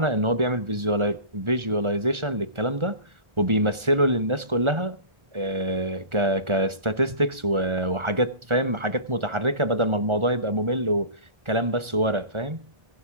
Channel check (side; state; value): left; late; 1.4 ms